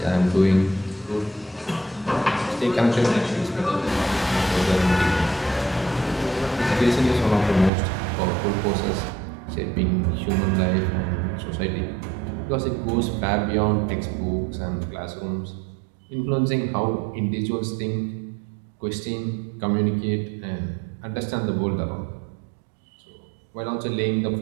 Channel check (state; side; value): drops out; left; at 7.7 s